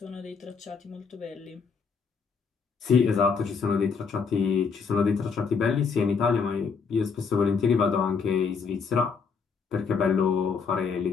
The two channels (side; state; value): right; quieter; 5.5 dB